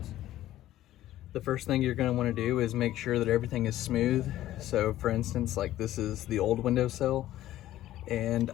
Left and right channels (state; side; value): quieter; right; 14.0 dB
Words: The first thing you're gonna wanna do is make sure that everything is smooth. So for instance, like this is the old windowsill and